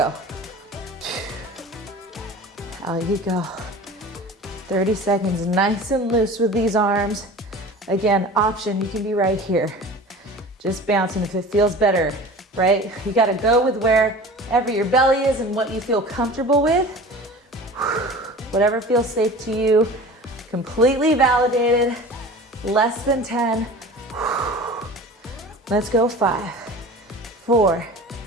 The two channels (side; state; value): both; normal; correlation 0.38